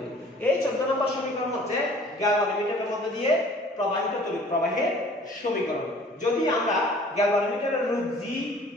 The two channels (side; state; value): both; normal; correlation 0.51